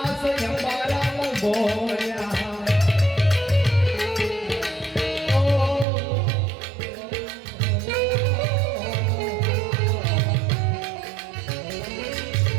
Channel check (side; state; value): left; drops out; at 5.9 s